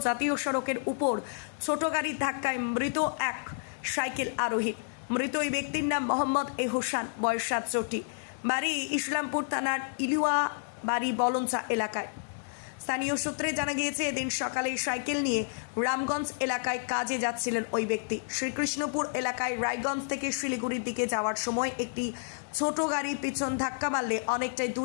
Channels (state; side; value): silent; right; digital silence